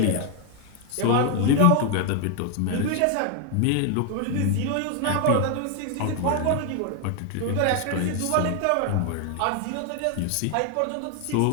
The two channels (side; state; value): both; different; correlation 0.00